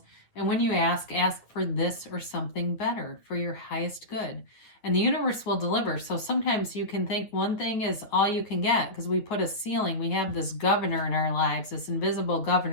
and when you ask for this or something better for your highest good. And the universe will deliver. So sometimes you can think one thing is all you can get, because we put a ceiling. We have this governor in our lives, this invisible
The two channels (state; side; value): late; right; 9.3 ms